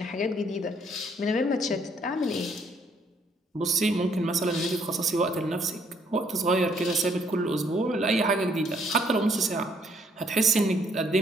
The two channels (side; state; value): both; normal; correlation 0.67